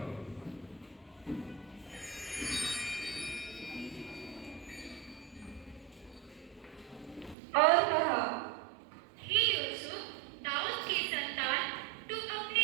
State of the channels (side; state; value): left; drops out; at 7.4 s